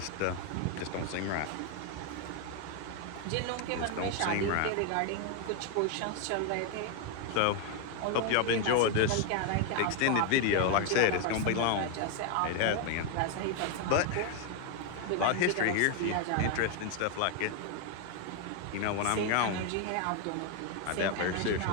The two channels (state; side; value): different; both; correlation 0.01